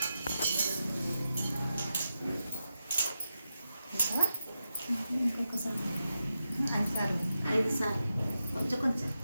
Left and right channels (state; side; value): inverted; both; correlation -0.88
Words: ఐదు సార్లు కొంచెం కొంచెం